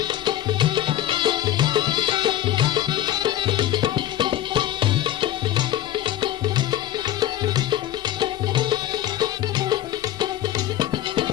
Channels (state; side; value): quieter; right; 12.6 dB